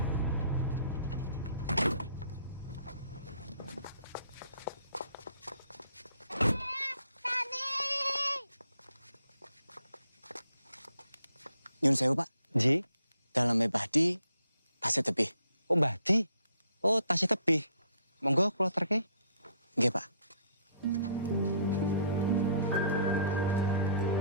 Nyun sewu, Pak. Ji? Dalamnya Badi, tasnya tebih. Oh, Badi? Oh, tasnya tebih. Monggo kula terke. Nggih, Pak.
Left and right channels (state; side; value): inverted; both; correlation -0.65